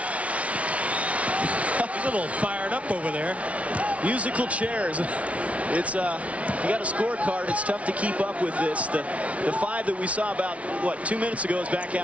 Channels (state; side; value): late; left; 0.064 ms